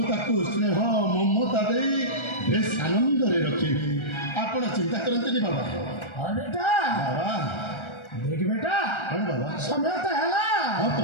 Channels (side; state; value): right; late; 1.3 ms